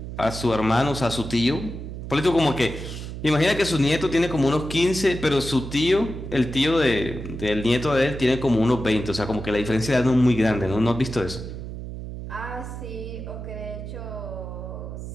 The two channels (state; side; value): noise; right; hum, 9 dB below the sound